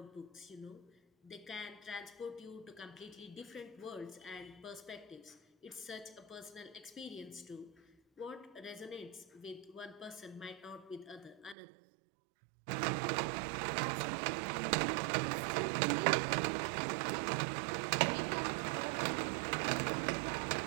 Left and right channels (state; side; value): drops out; left; at 11.6 s